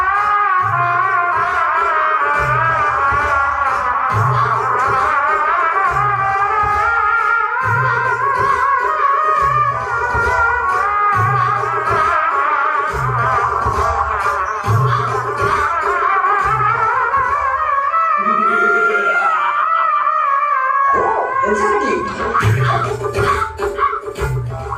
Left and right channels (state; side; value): identical; both; correlation 1.00